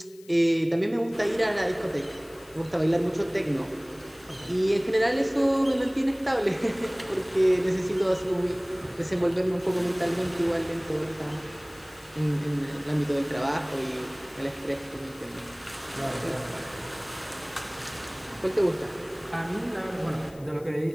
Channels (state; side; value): noise; left; hiss, 25 dB below the sound